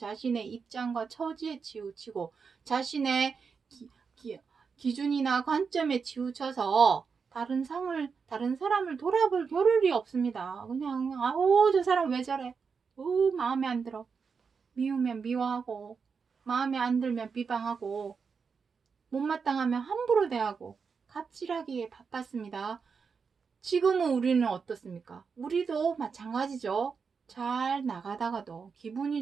입장과 처지에 치우치고 자신의 기준이나 관점에 치우쳐서 다른 사람을 돌아볼 겨를이 없습니다. 그냥 저 사람 왜 저래? 마음에 안 들어. 미우면 미워하고 마음에 안 들면 비방하고 못마땅하면 함부로 대하고 갑질하기에 바빴습니다. 지금은 우리는 어떻습니까? 우리도 마찬가지죠. 잘 나가다가도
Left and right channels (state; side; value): quieter; left; 5.6 dB